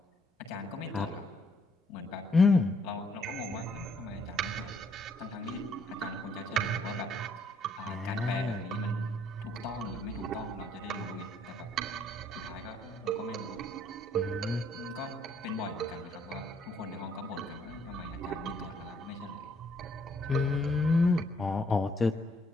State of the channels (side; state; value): both; normal; correlation 0.68